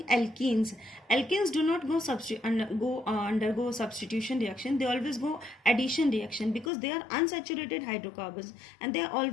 alkenes. Alkenes do not undergo substitution reaction. They always go addition reaction because they are unsaturated hydrocarbons and they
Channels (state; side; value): drops out; right; at 6.7 s